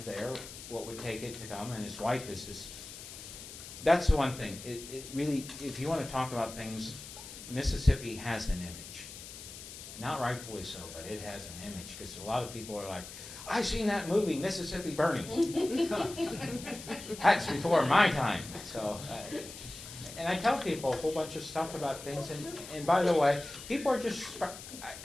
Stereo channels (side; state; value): left; noise; hiss, 13 dB below the sound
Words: there? What would take it to come? And his wife is this. That's the one thing. It really, if you want to talk about things, Mississippi has an image. Not rightfully so, but it has an image, because a lot of people are like, I've seen that movie, Mississippi Burning. That's before my time. So, and I tell people a whole bunch of stuff about things, and by the way, people are just,